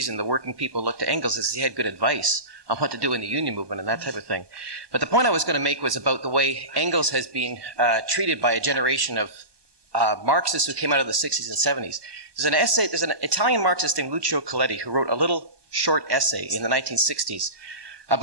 the working people looked to Engels is he had good advice on what to do in the union movement and that type of thing. But the point I was going to make was about the way Engels has been treated by a generation of Marxists who came out of the 60s and 70s. There's an Italian Marxist named Lucio Coletti who wrote a little short essay in the 1960s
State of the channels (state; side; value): late; left; 1.2 ms